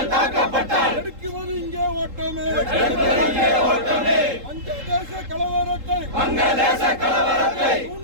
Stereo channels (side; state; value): left; late; 3.7 ms